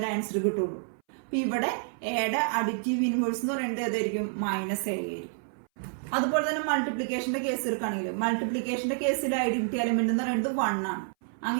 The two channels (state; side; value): silent; left; 59 dB below the other